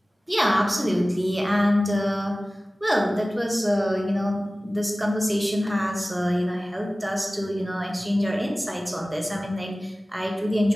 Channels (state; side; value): normal; both; correlation 0.97